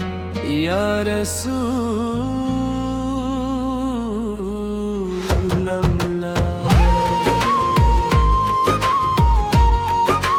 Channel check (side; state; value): both; identical; correlation 1.00